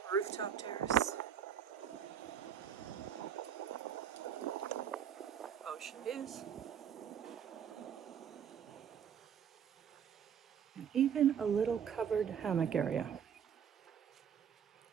rooftop terrace, ocean views, and even a little covered hammock area.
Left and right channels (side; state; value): left; quieter; 8.3 dB